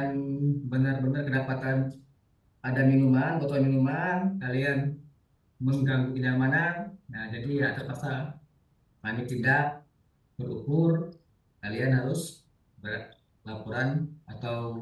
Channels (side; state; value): both; identical; correlation 1.00